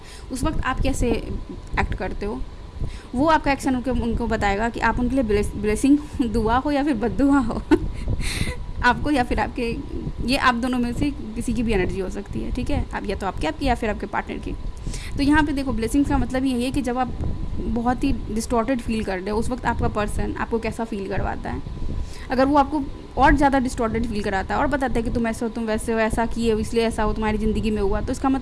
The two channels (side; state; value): both; identical; correlation 1.00